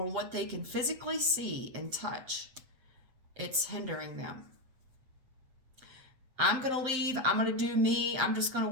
what they can physically see and touch, it's hindering them. I'm going to leave. I'm going to do me. I'm just going to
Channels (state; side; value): late; left; 7.8 ms